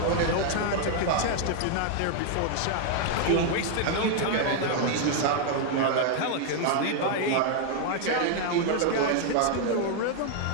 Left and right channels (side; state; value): both; different; correlation 0.00